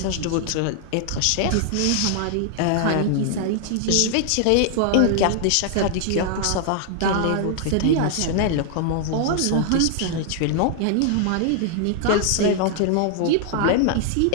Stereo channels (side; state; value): both; different; correlation 0.00